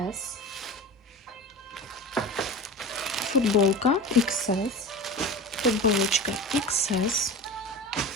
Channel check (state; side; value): normal; both; correlation 0.31